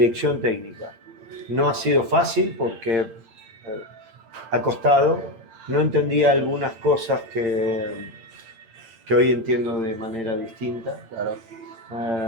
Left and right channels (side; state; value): left; late; 8.8 ms